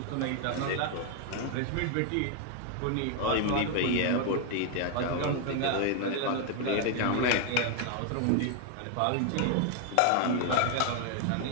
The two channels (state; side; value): different; both; correlation 0.00